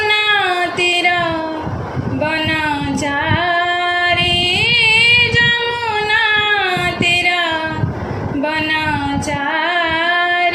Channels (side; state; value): both; identical; correlation 1.00